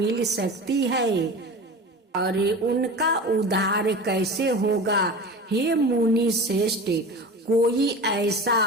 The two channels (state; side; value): normal; both; correlation 0.33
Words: सकती है और उनका उद्धार कैसे होगा। हे मुनि श्रेष्ठ, कोई ऐसा